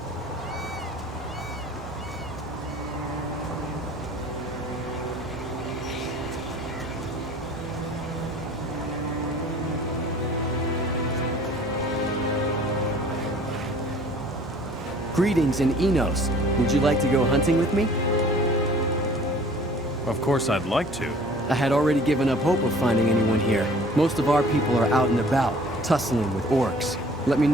Greetings in Enos. Would you like to go hunting with me? Of course I'd like to. I had already given up hope of finding anyone here. Most of our people are out and about, tussling with orcs. Let me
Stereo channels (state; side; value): normal; both; correlation 0.50